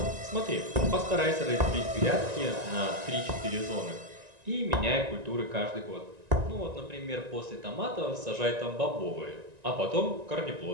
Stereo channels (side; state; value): left; late; 1.9 ms